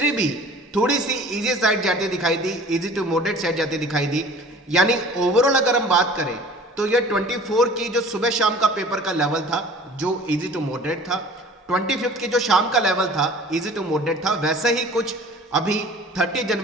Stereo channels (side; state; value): both; normal; correlation 0.46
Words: भी थोड़ी सी इजी साइड जाती दिखाई दी, इजी टू मॉडरेट साइड जाती दिखाई दी। यानी ओवरऑल अगर हम बात करें तो ये 24 की जो सुबह शाम का पेपर का लेवल था जो इजी टू मॉडरेट था, 25 की जो शाम का लेवल था इजी टू मॉडरेट था, वैसे ही कुछ अभी 30